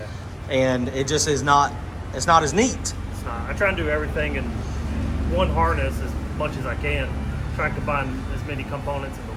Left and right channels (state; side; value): identical; both; correlation 1.00